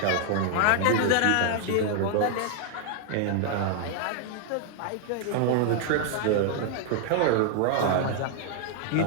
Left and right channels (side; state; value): both; different; correlation 0.00